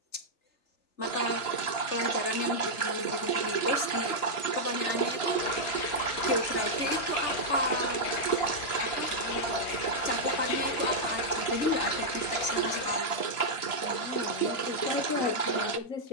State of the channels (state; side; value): late; right; 2.9 ms